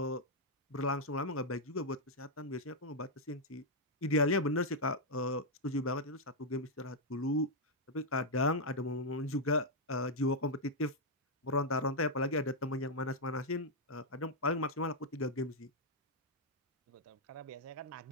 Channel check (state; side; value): normal; both; correlation -0.02